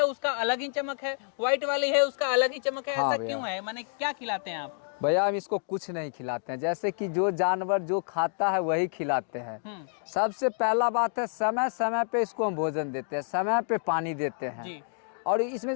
उसका अलग ही चमक है, व्हाइट वाली है उसका अलग ही चमक है। हाँ ऐसा क्यों है, माने क्या खिलाते हैं आप? भैया हम इसको कुछ नहीं खिलाते हैं, जैसे कि जो जानवर जो खाता है वही खिलाते हैं। सबसे पहला बात है समय समय पे इसको हम भोजन देते हैं, समय पे पानी देते हैं जी। और इसमें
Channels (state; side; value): silent; right; digital silence